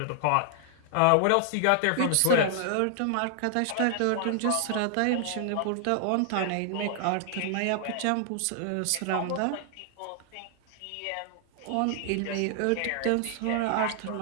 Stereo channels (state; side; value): different; both; correlation 0.00